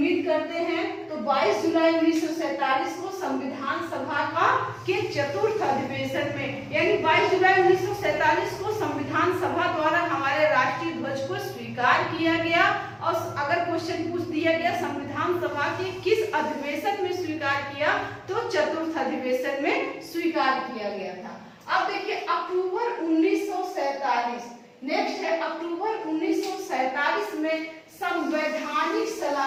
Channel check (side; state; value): both; identical; correlation 1.00